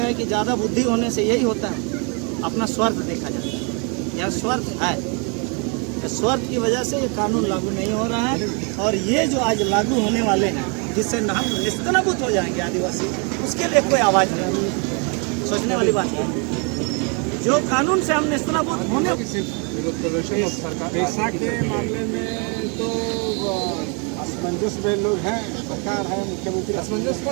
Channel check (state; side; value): quieter; left; 35.1 dB